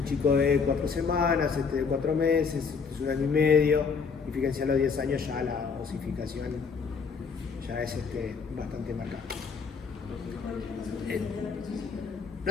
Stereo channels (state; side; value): quieter; right; 5.5 dB